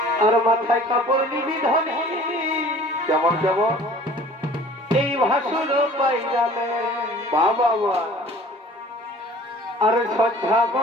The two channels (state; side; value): normal; both; correlation 0.48